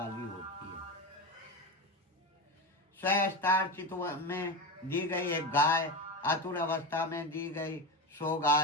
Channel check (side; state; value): both; normal; correlation 0.21